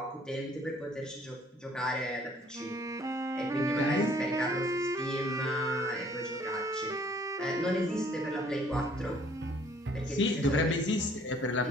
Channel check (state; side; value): normal; both; correlation 0.59